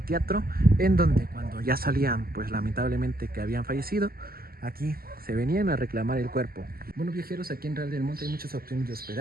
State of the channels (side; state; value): left; late; 0.43 ms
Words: en donde cuando ya salían pues lamentablemente que habían fallecido, aquí se venían a reclamar el cuerpo. Bueno, viajeros, aquí en Real del Monte hay muchas opciones de